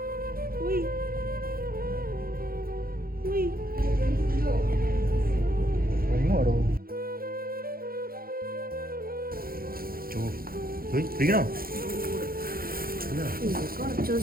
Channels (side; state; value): left; late; 0.43 ms